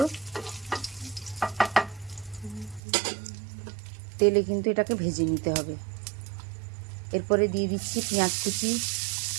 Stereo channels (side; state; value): left; drops out; at 2.8 s